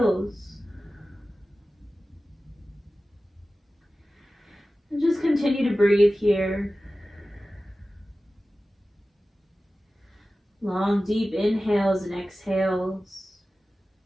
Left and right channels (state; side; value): normal; both; correlation 0.95